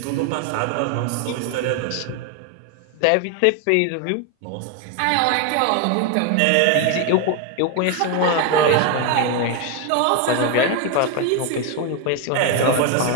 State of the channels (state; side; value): different; both; correlation 0.01